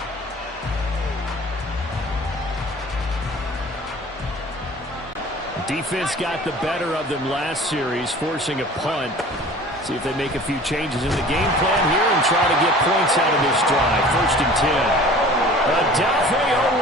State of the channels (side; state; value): both; normal; correlation 0.45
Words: Defense got the better of them last series, forcing a punt. See if they make a few changes in the game plan here and try to get points out of this drive. 1st and 10. Adolphe